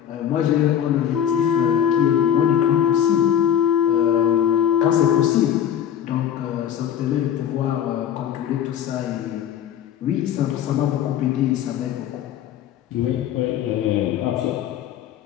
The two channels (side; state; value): right; quieter; 9.8 dB